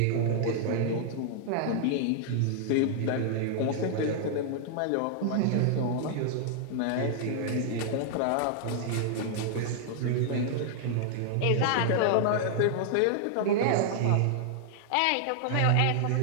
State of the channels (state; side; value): different; both; correlation -0.01